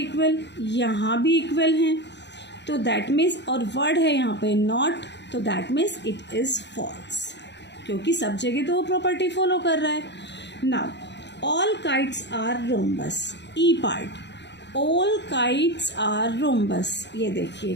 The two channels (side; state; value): right; late; 0.51 ms